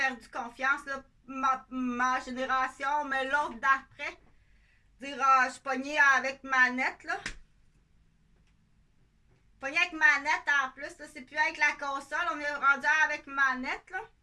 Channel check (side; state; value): both; identical; correlation 1.00